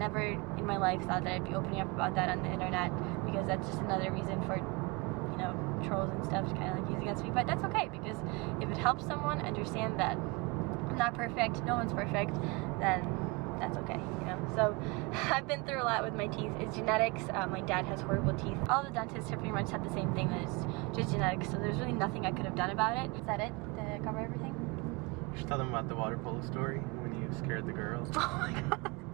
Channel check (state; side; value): quieter; left; 26.6 dB